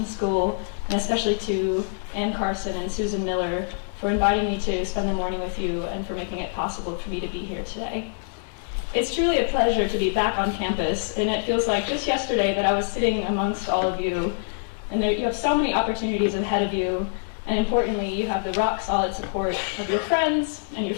School, and especially to Ann Carson and Susan Miller for inviting me to spend the morning with you and for making it possible for me to be here today. It's truly a pleasure to be back on campus, and it feels like just yesterday that I was sitting amongst all of you, and you have so many opportunities ahead of you, and importantly, you have the rock-solid support of your friends and your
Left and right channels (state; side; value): silent; right; digital silence